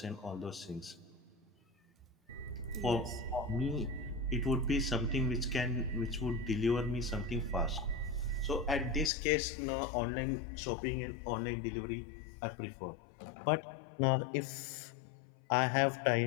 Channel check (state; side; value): drops out; right; at 9.1 s